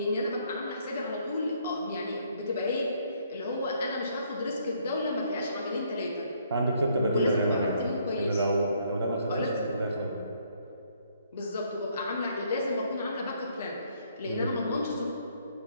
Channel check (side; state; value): both; inverted; correlation -0.67